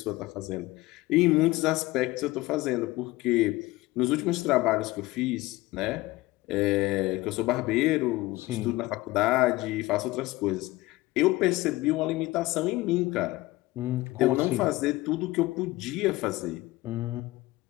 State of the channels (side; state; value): right; quieter; 19.6 dB